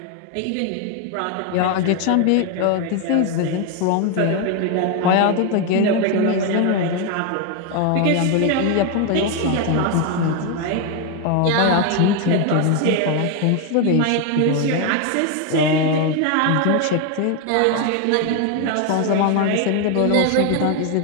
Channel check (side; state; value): both; different; correlation 0.01